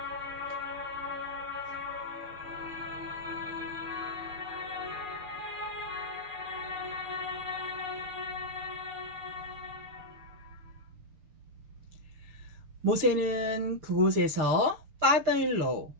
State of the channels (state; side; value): late; left; 6.7 ms